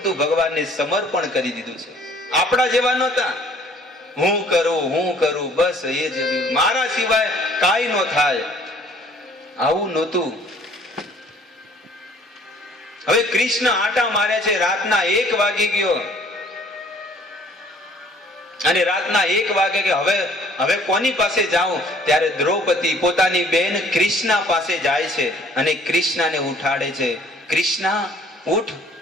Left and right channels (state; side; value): normal; both; correlation 0.57